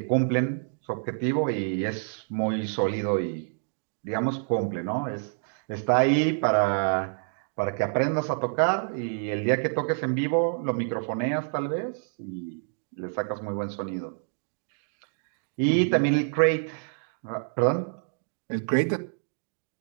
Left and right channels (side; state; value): left; silent; digital silence